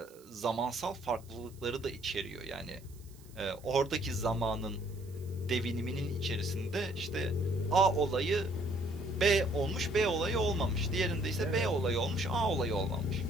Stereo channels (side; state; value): right; noise; hiss, 25 dB below the sound